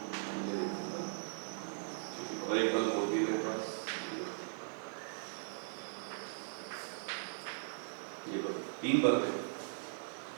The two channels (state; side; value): silent; left; digital silence